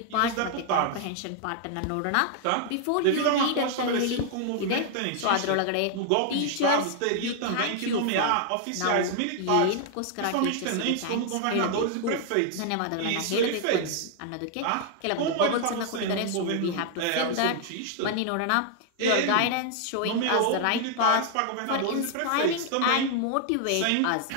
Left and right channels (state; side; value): different; both; correlation 0.00